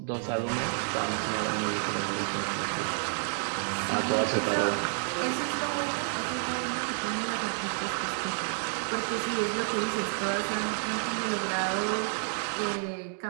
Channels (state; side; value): silent; left; 58 dB below the other